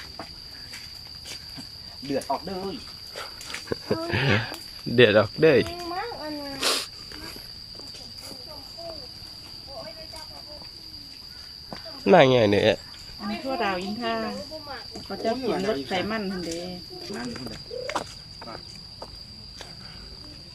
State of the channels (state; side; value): identical; both; correlation 1.00